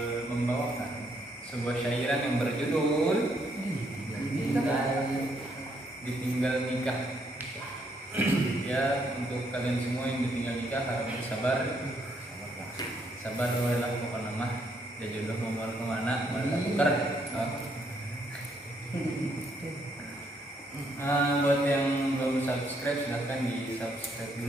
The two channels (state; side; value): normal; both; correlation 0.72